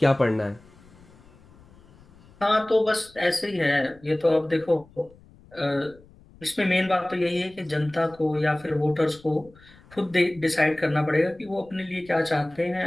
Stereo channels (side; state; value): left; noise; rumble, 26 dB below the sound